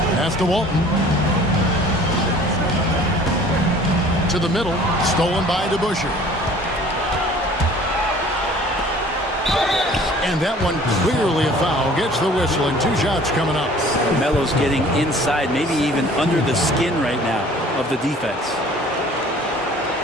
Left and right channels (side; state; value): both; normal; correlation 0.50